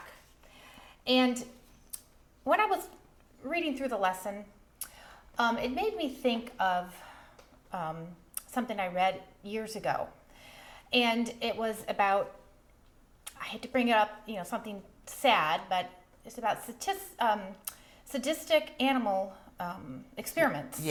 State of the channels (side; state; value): both; identical; correlation 1.00